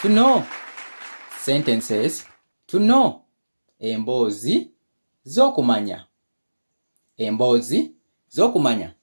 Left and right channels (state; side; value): inverted; both; correlation -1.00